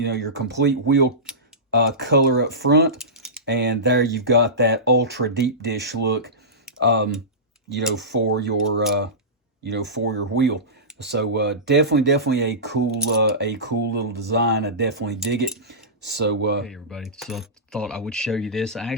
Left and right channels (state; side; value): normal; both; correlation -0.19